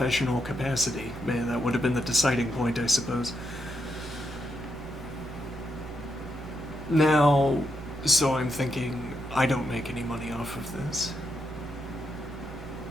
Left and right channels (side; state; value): both; normal; correlation 0.82